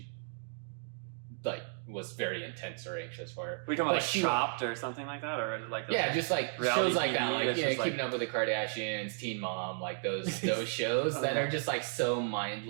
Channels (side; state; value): left; silent; digital silence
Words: was very intense or anxious for. We talking But about like she- Chopped or something like that, or like just like reality shows like that, TV like that's just, Keeping Up with the Kardashians, Teen Mom, like those shows that are just like so